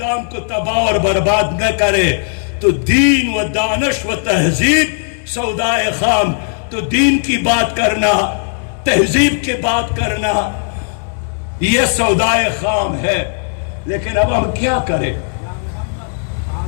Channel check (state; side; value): silent; right; digital silence